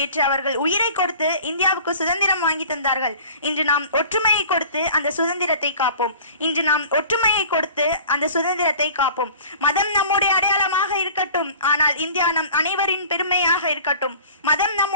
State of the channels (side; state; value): both; inverted; correlation -0.44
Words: அவர்கள் உயிரை கொடுத்து இந்தியாவுக்கு சுதந்திரம் வாங்கி தந்தார்கள். இன்று நாம் ஒற்றுமையை கொடுத்து அந்த சுதந்திரத்தை காப்போம். இன்று நாம் ஒற்றுமையை கொடுத்து அந்த சுதந்திரத்தை காப்போம். மதம் நம்முடைய அடையாளமாக இருக்கட்டும், ஆனால் இந்தியா நம் அனைவரின் பெருமையாக இருக்கட்டும். மதம்